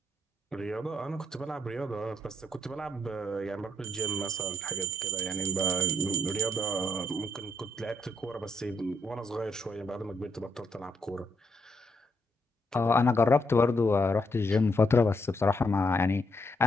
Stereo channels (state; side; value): normal; both; correlation 0.75